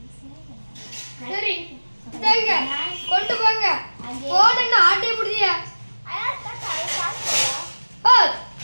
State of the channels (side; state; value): both; inverted; correlation -1.00